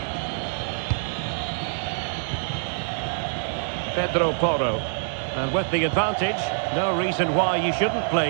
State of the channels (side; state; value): left; silent; digital silence